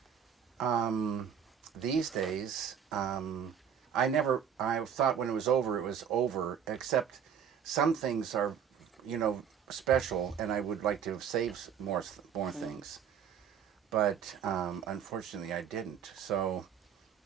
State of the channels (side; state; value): left; quieter; 8.1 dB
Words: These days, I thought when it was over, except some things are, special, and I would like to have saved more things. But unfortunately I didn't. So,